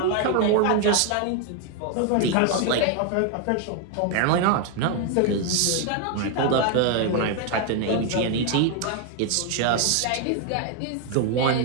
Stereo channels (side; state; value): both; different; correlation 0.01